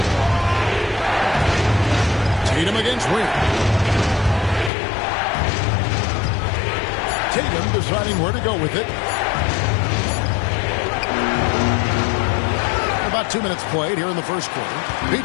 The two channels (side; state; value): right; drops out; at 4.7 s